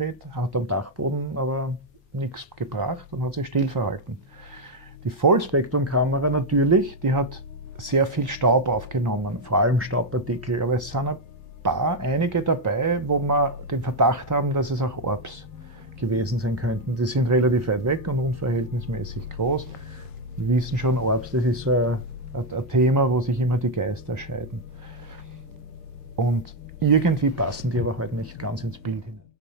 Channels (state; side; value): normal; both; correlation 0.02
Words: hat am Dachboden aber nichts gebracht und hat sich still verhalten. Die Vollspektrumkamera natürlich, die hat sehr viel Staub aufgenommen, vor allem Staubpartikel, aber es sind einige dabei, wo wir den Verdacht haben, dass es auch Orbs gewesen sein könnten. Die sind relativ weit weg und unverhältnismäßig groß. Wir wissen schon, Orbs, das ist so ein Thema, wo sich immer die Geister scheiden. Und irgendwie passen die aber halt nicht ganz ins Bild hinein.